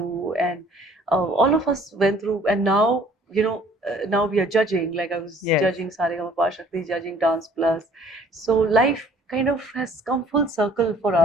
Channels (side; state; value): both; normal; correlation 0.56